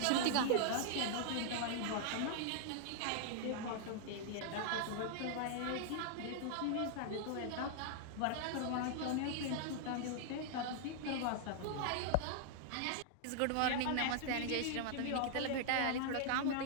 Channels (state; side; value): different; both; correlation -0.01